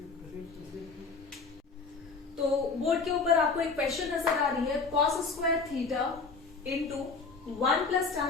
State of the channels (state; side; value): quieter; right; 4.4 dB